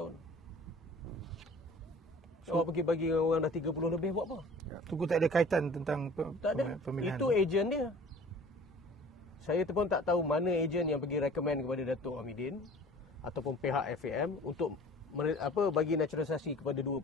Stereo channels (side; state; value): both; normal; correlation 0.46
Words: Awak pergi bagi orang dah 30 lebih buat apa? Tunku tak ada kaitan tentang Tak ada. pemilihan. Itu ejen dia. Saya pun tak tahu mana ejen yang pergi recommend kepada Datuk Hamidin ataupun pihak FAM untuk bagi naturalisasi kepada dua